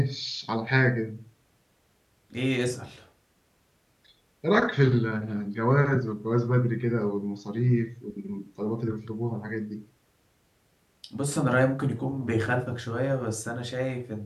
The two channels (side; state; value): both; identical; correlation 1.00